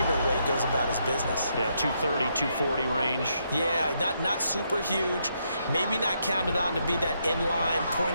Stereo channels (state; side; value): inverted; both; correlation -0.77